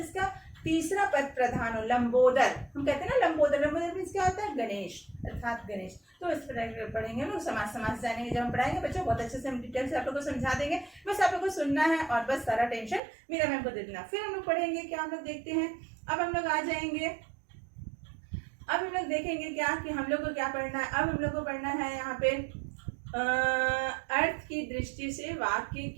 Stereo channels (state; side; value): drops out; left; at 13.0 s